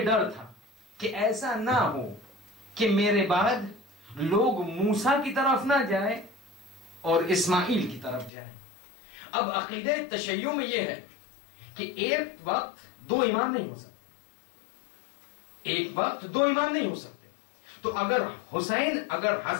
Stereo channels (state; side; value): drops out; right; at 8.3 s